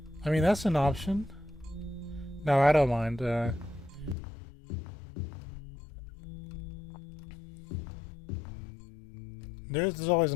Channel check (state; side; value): drops out; right; at 4.2 s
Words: I mean, that's an option. No, I don't mind. There's always